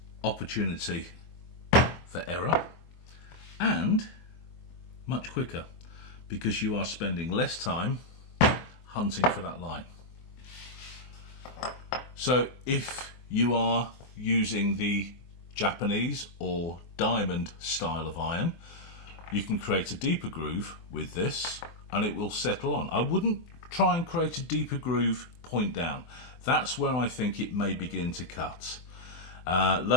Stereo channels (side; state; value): right; late; 24 ms